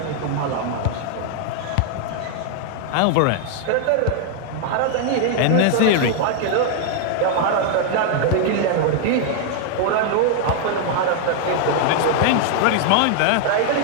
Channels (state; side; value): different; both; correlation 0.00